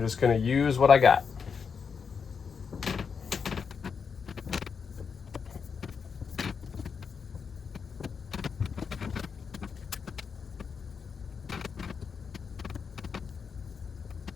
going to use what I got.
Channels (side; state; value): right; quieter; 6.0 dB